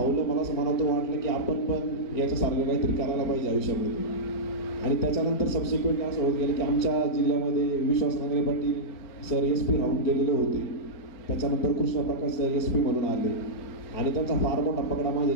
मला असं मनातून वाटलं की आपण पण याच्यासारखं काहीतरी करायला पाहिजे आयुष्यामध्ये. आणि त्याच्यानंतर सबसिक्वेंटली असं होत गेलं की आमच्या जिल्ह्यामध्ये विश्वास नांगरे पाटील सर SP राहून गेलेले होते. त्याच्यानंतर कृष्णप्रकाश सर SP म्हणून आले आणि त्यांचा फार मोठा पगडा माझ्या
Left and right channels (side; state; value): right; late; 4.4 ms